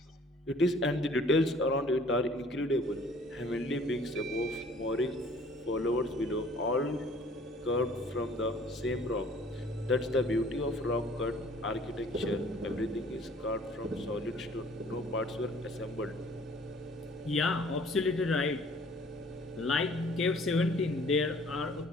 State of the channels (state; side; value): normal; both; correlation 0.54